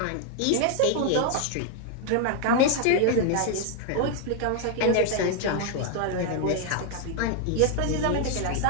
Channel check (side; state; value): both; different; correlation 0.00